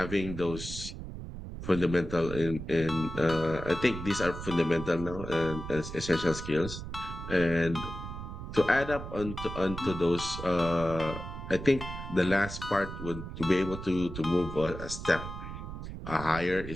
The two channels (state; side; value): noise; right; rumble, 9 dB below the sound